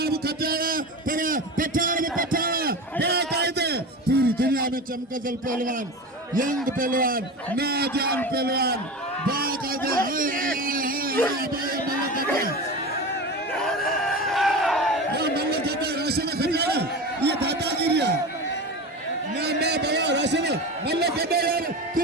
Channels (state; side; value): normal; both; correlation 0.27